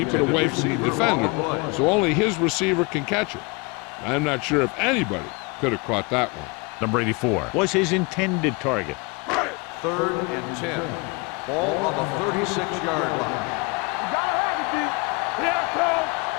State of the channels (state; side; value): quieter; right; 28.7 dB